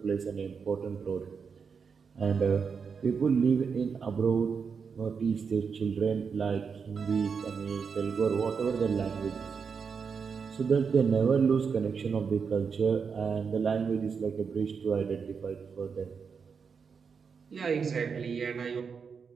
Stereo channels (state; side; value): quieter; left; 5.9 dB